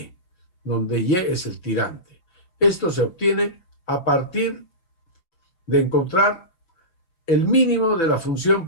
donde Y es el tirante. Esto se obtiene a partir de encontrar el mínimo de la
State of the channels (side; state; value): right; late; 5.9 ms